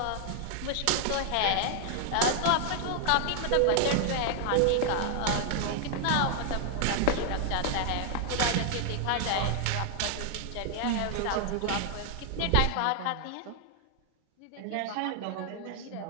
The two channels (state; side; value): different; both; correlation 0.00